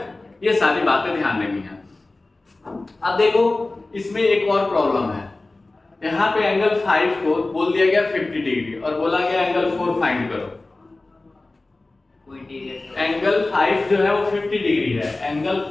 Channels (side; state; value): right; quieter; 3.1 dB